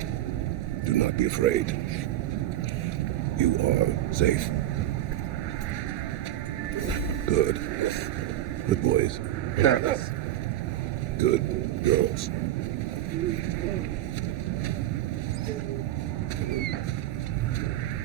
not be afraid. You are safe. Good. Good boys. Yes. Good girls.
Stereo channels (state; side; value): quieter; left; 13.2 dB